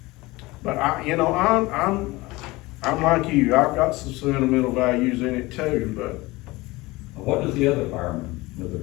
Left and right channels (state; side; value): quieter; right; 21.3 dB